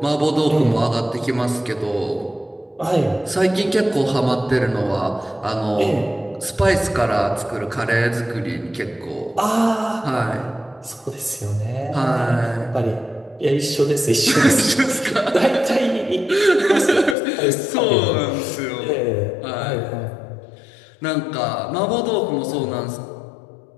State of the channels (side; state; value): right; drops out; at 17.2 s